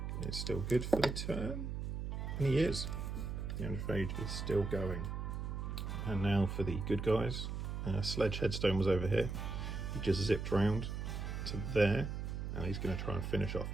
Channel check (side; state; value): right; noise; hum, 4 dB below the sound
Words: is still good for the turn. And he is. The Androphage is still going. And now for the good guys. Sledge Headstone was over here. He just zipped round to there, and he's going to try and finish off